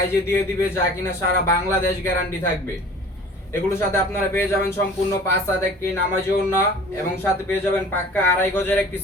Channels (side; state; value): both; normal; correlation 0.45